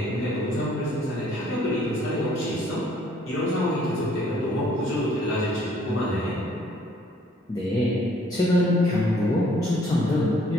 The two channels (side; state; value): both; normal; correlation 0.61